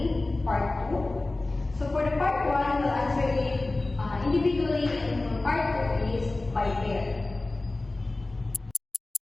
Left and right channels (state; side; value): quieter; right; 3.0 dB